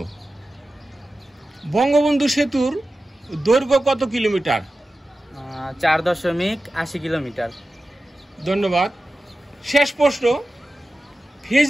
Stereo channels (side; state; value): both; normal; correlation 0.94